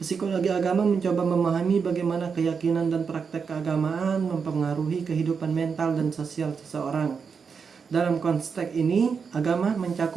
Psikologi agama mencoba memahami bagaimana keyakinan dan praktek keagamaan mempengaruhi kehidupan mental dan sosial seseorang. Dalam konteks ini, agama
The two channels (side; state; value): left; quieter; 5.8 dB